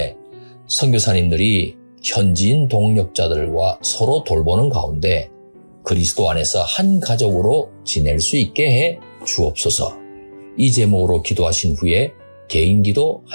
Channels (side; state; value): both; inverted; correlation -1.00